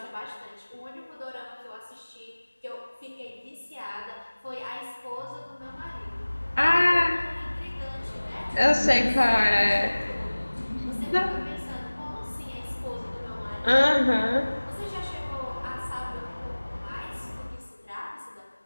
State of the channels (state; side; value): inverted; both; correlation -1.00